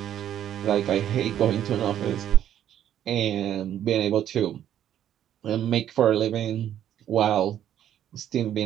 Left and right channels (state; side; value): quieter; left; 10.7 dB